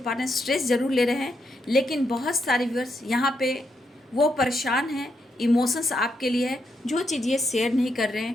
स्ट्रेस ज़रूर ले रहे हैं, लेकिन बहुत सारे व्यूअर्स यहाँ पे वो परेशान हैं, इमोशंस आपके लिए है, जो चीज़ ये शेयर नहीं कर रहे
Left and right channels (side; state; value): both; normal; correlation 0.80